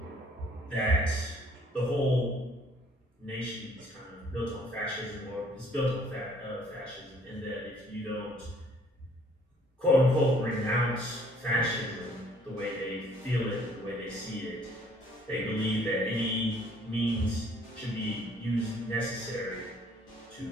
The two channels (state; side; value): normal; both; correlation 0.60